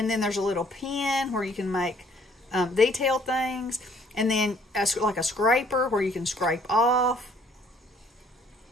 then there's a little pen where you can make detailed things, and then like a scraper where you can scrape off.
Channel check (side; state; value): both; normal; correlation 0.61